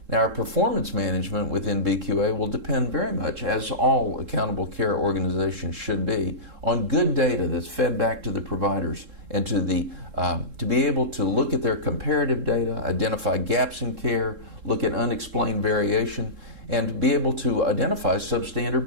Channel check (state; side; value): late; left; 3.7 ms